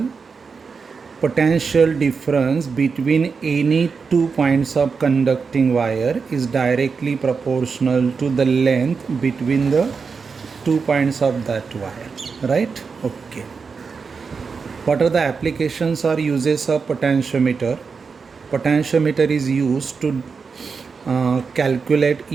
Potential difference between any 2 points of conducting wire is directly proportional to the length between the 2 points of that wire, right? Okay. What are the applications or uses of potentiometer? Potentiometer is used to calculate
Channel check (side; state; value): left; quieter; 5.2 dB